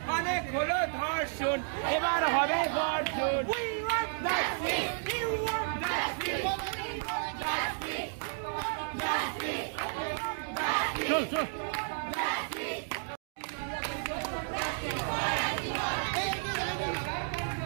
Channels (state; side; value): silent; left; 56 dB below the other